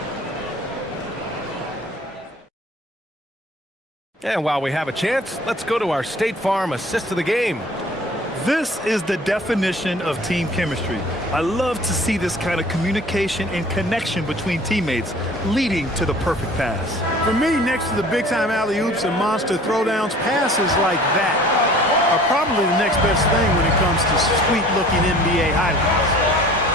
And while we have a chance, let's go to our State Farm assist of the game. This is the definition of team chemistry. I love to see this kind of communication and connection between teammates leading to the perfect pass. For me, next to the big-time alley-oops and monster throwdowns, passes like that are probably the next best thing when it comes to sweet-looking NBA highlights.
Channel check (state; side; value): normal; both; correlation 0.48